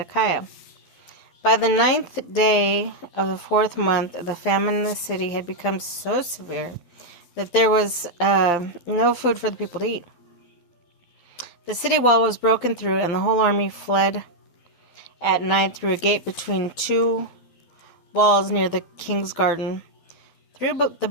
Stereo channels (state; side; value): late; right; 12 ms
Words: By the 9th day of the 4th month, the famine in the city had become so severe that there was no food for the people to eat. The city wall was broken through, and the whole army fled at night through a gate between two walls near the king's garden. Though the